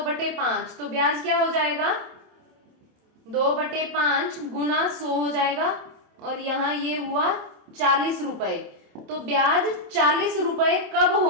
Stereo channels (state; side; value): late; left; 27 ms